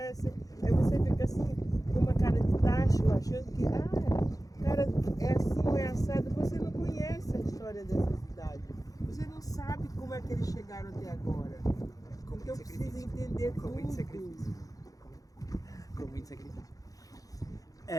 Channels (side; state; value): right; late; 0.17 ms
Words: Aí você fica assim, com uma cara de tacho, achando que, cara, é assim ou é assado. Você não conhece a história dessa cidade. Você não sabe como é que eles chegaram até agora. Então precisa entender Com muito tudo. sacrifício. Com muito sacrifício.